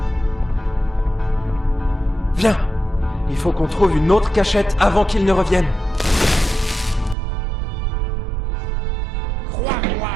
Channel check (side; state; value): left; drops out; at 7.2 s